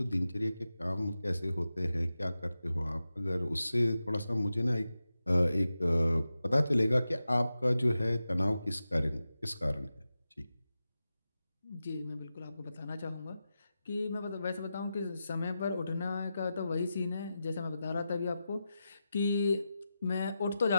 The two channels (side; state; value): both; inverted; correlation -0.92